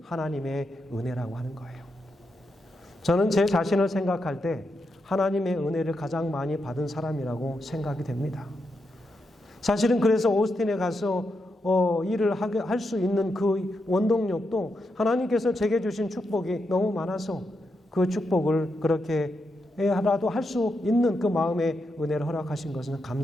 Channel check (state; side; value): normal; both; correlation 0.84